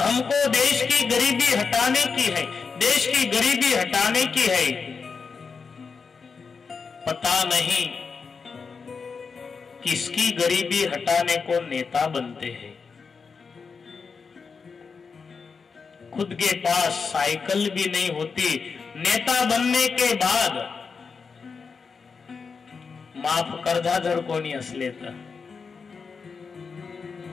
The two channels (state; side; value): quieter; right; 5.2 dB